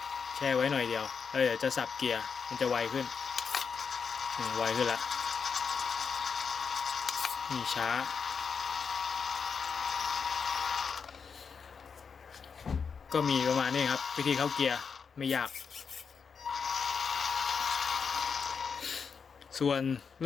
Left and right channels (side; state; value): right; quieter; 5.9 dB